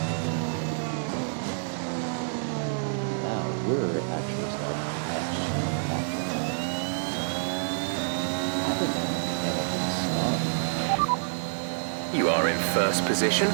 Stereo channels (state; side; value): silent; left; 59 dB below the other